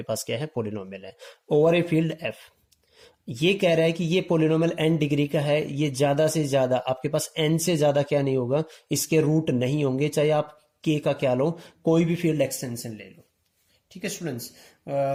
पास क्या है, पोलिनोमियल है ओवर ए फील्ड f। ये कह रहा है कि ये पोलिनोमियल n डिग्री का है, ये ज्यादा से ज्यादा आपके पास n से ज्यादा क्या नहीं होगा, इसके रूट नहीं होंगे, चाहे आप k का क्या लो, कोई भी फील्ड एक्सटेंशन ले लो। ठीक है students,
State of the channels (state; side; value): identical; both; correlation 1.00